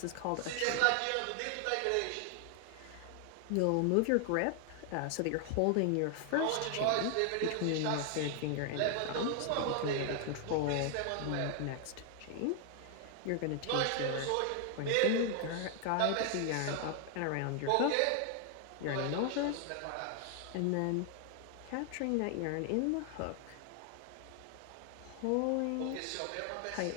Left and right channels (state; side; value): different; both; correlation 0.00